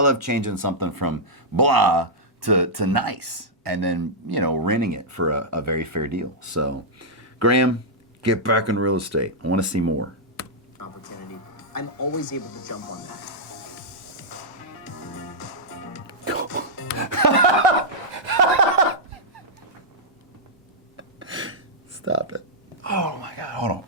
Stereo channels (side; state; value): both; normal; correlation -0.09